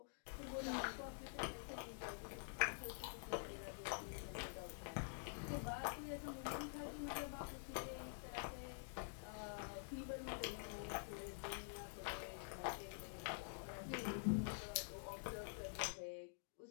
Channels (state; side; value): silent; right; digital silence